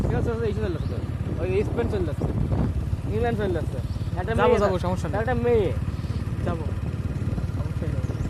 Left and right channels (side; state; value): both; identical; correlation 1.00